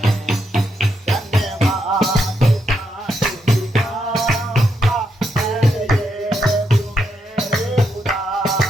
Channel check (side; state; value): both; normal; correlation 0.80